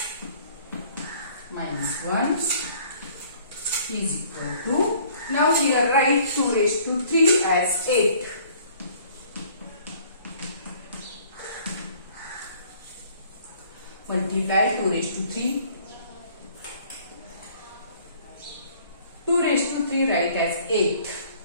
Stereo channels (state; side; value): inverted; both; correlation -0.56